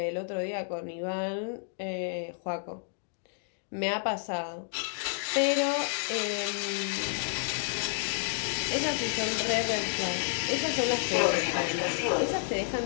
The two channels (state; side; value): silent; right; digital silence